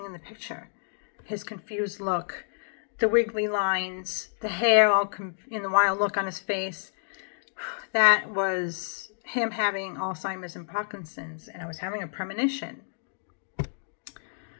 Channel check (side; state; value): right; silent; digital silence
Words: in the picture. His confused look, the wiggly lines, the hair all in the wild look on his face. That was him having Alzheimer's and Parkinson's, and I was having a premonition.